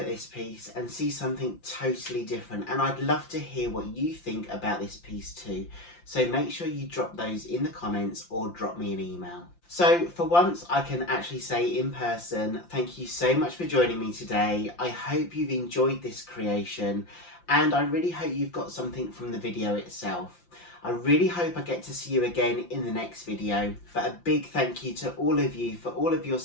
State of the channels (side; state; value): right; late; 5.8 ms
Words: this piece and see something totally different, and I'd love to hear what you think about this piece too. So make sure you drop those in the comments or drop me an email. So for once I can actually say in person, thank you so much for joining me today. I hope you've enjoyed this creation, and I really hope you've got something from the video itself. I really hope I get to see you again in the next video. But a big thank you to all of you for all of your